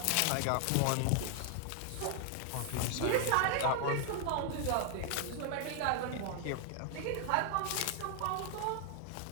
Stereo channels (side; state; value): both; different; correlation 0.00